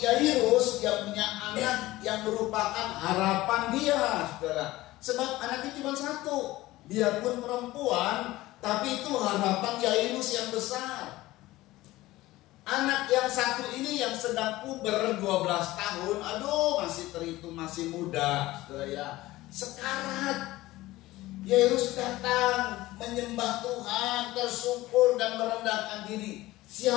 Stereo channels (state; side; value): quieter; right; 17.8 dB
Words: dia punya anak yang merupakan harapan dia, saudara. Sebab anaknya cuma satu. Dia pun perempuan, tapi itu harapan Yairus yang besar. Anak yang satu ini yang sedang puber 12 tahun, aduh masih terhitung masih muda, saudara ya. Sekarat. Yairus datang menyembah Tuhan, tersungkur dan merendahkan diri.